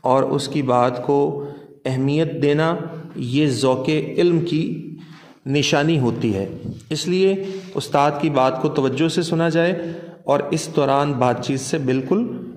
اور اس کی بات کو اہمیت دینا، یہ ذوق علم کی نشانی ہوتی ہے۔ اس لیے استاد کی بات کو توجہ سے سنا جائے اور اس دوران بات چیت سے بالکل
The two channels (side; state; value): both; identical; correlation 1.00